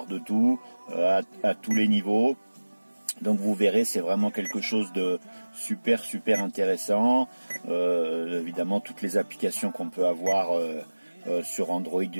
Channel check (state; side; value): inverted; both; correlation -1.00